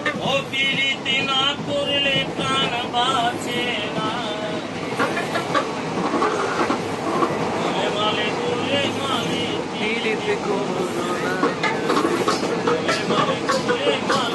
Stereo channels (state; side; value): identical; both; correlation 1.00